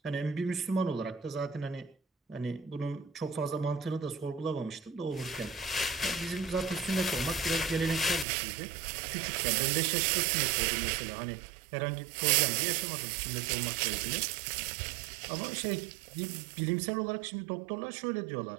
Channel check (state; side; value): drops out; left; at 8.2 s